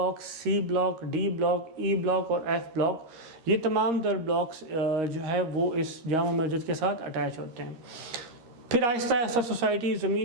C block, D block, E block और F ब्लॉक, ये तमाम तर ब्लॉक्स जो है वो इस जामा मस्जिद के साथ अटैच होते हैं। फिर आहिस्ता आहिस्ता सोसाइटी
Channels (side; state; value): left; late; 13 ms